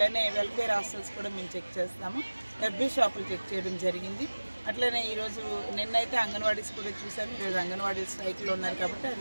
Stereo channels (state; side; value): inverted; both; correlation -1.00